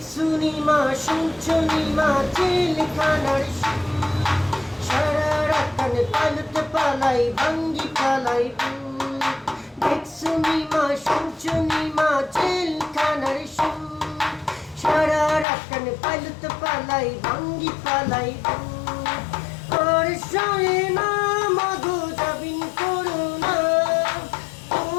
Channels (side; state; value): right; drops out; at 15.5 s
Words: মা শুনছুনি মা জেলখানার সারা রাত কানে পালতে পালাই ভাঙ্গি পালাই দেখছুনি মা শুনছুনি মা জেলখানার সারা রাত কানে পালতে পালাই ভাঙ্গি পালাই আর সয়ে না মধু যাবিন করো না